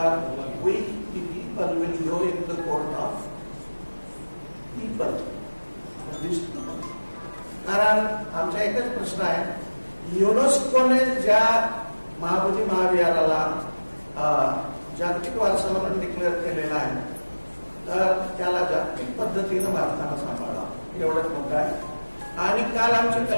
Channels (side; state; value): both; inverted; correlation -1.00